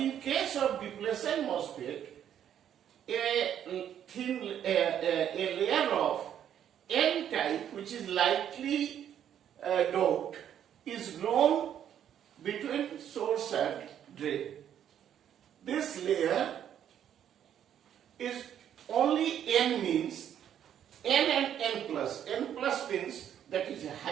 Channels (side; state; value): left; quieter; 9.8 dB